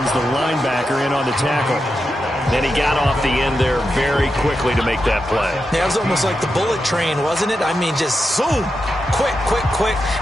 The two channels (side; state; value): both; normal; correlation 0.88